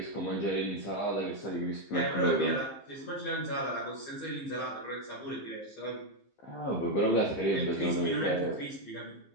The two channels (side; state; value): right; late; 15 ms